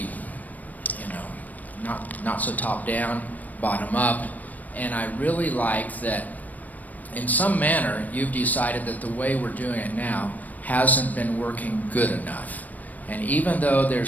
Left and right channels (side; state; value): right; late; 0.079 ms